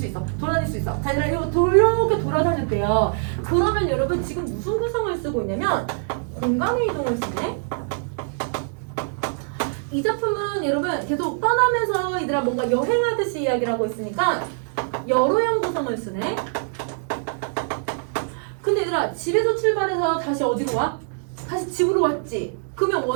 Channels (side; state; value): left; silent; 63 dB below the other